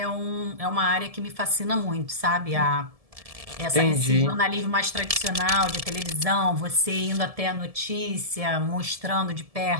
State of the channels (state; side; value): late; left; 1.7 ms